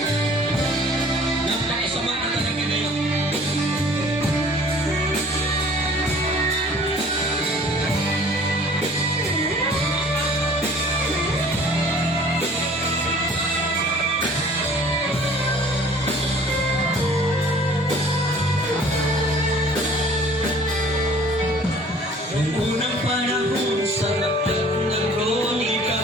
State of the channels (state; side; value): normal; both; correlation 0.51